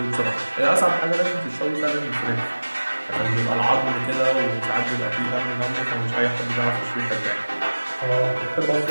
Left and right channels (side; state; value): both; inverted; correlation -1.00